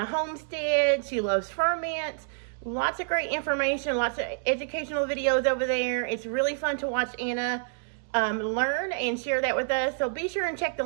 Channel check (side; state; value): left; silent; digital silence